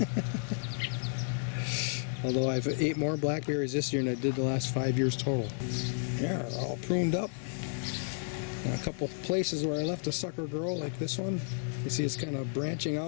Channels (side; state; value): right; silent; digital silence